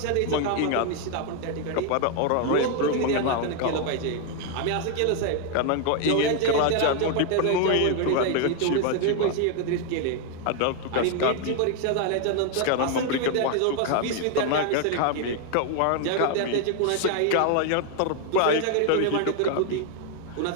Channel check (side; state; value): both; different; correlation 0.01